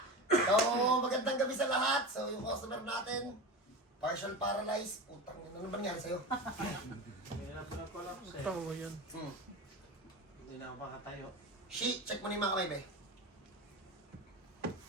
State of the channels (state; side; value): normal; both; correlation 0.27